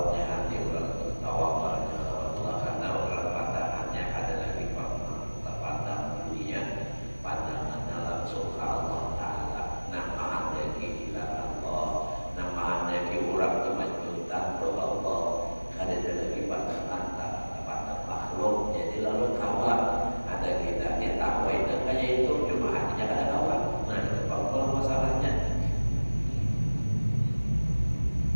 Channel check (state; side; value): inverted; both; correlation -1.00